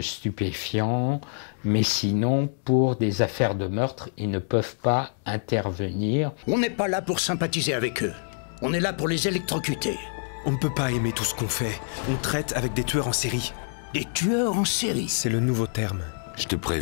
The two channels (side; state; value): right; silent; digital silence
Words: stupéfiants, mais sinon, pour des affaires de meurtre, ils ne peuvent pas intervenir. On n'est pas là pour sympathiser avec eux. On est là pour les électrocuter. On ne peut pas aimer tout ce qu'on fait. On traite avec des tueurs en série. Des tueurs en série. C'est le nouveau terme. Je te